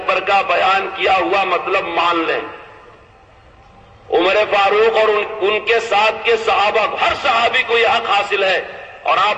کا بیان کیا ہوا مطلب مان لیں۔ عمر فاروق اور ان کے ساتھ کے صحابہ، ہر صحابی کو یہ حق حاصل ہے۔ اور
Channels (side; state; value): both; identical; correlation 1.00